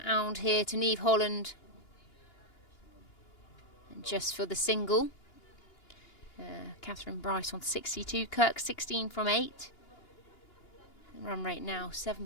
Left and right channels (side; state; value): right; late; 2.9 ms